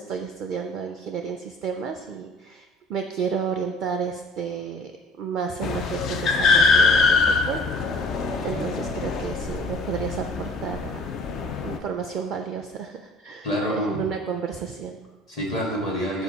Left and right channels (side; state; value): both; normal; correlation 0.49